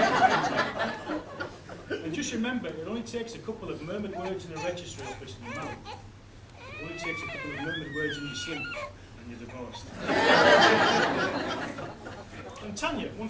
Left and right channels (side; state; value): both; identical; correlation 1.00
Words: And just remember, it only takes a couple of murmured words in a registry office and you're married. It only takes a couple of murmured words in your sleep and you're divorced. And Tanya, one